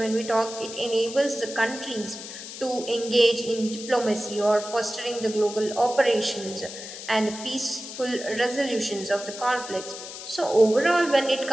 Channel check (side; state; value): left; noise; hiss, 11 dB below the sound